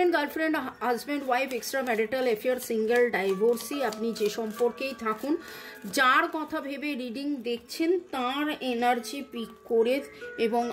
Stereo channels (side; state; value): both; identical; correlation 1.00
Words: girlfriend, husband, wife, extra marital affair, single, divorcee, আপনি যে সম্পর্কেই থাকুন, যার কথা ভেবে রিডিং দেখছেন তার এনার্জি পিক করে এবং